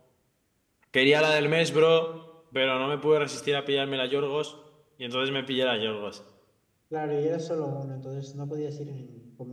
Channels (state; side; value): identical; both; correlation 1.00